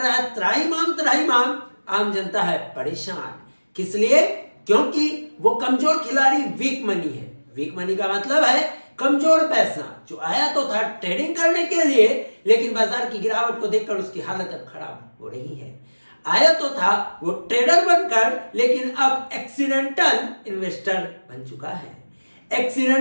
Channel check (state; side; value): inverted; both; correlation -1.00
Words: है त्राहिमाम। आम जनता है परेशान। किस लिए? क्योंकि वो कमजोर खिलाड़ी वीक मनी है। वीक मनी का मतलब है कमजोर पैसा जो आया तो था ट्रेडिंग करने के लिए, लेकिन बाजार की गिरावट को देखकर उसकी हालत अब खराब हो रही है। आया तो था वो ट्रेडर बनकर, लेकिन अब एक्सीडेंटल इन्वेस्टर बन चुका है।